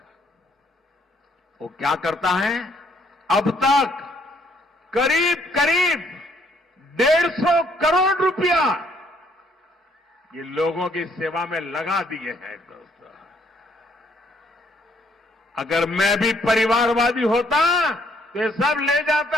वो क्या करता है, अब तक करीब करीब 150 करोड़ रुपया ये लोगों की सेवा में लगा दिए हैं। दोस्तों, अगर मैं भी परिवारवादी होता तो ये सब ले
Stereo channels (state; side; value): normal; both; correlation 0.68